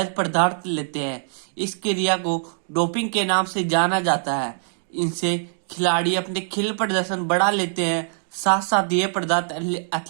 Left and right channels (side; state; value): left; silent; digital silence